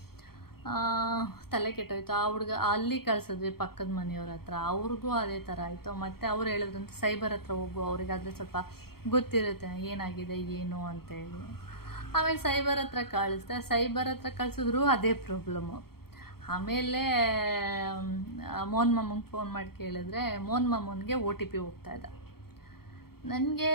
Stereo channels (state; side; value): late; right; 0.94 ms